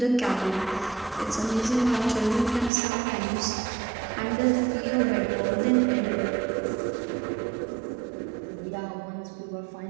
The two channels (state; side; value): drops out; left; at 2.7 s